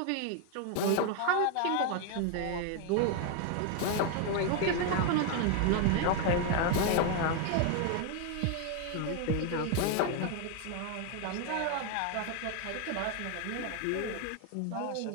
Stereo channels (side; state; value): both; different; correlation 0.01